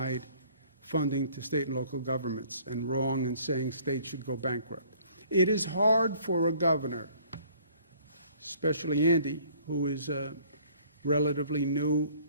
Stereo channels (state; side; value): inverted; both; correlation -0.57